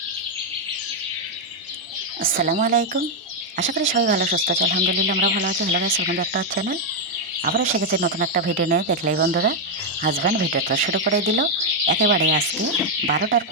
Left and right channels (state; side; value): normal; both; correlation 0.01